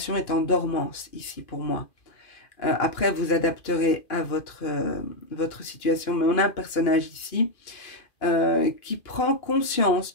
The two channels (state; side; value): late; right; 2.5 ms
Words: est en dormance ici pour moi. Après, vous adapterez à votre situation. Mais on a un personnage ici qui prend conscience